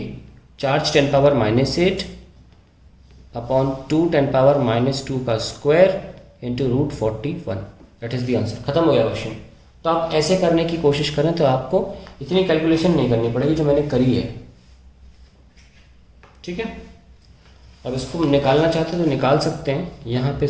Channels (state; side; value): identical; both; correlation 1.00